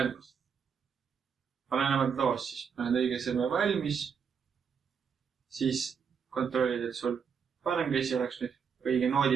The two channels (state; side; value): quieter; left; 6.7 dB